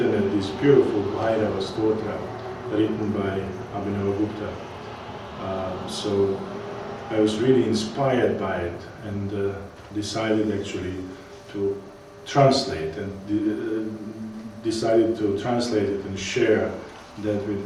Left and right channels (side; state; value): both; identical; correlation 1.00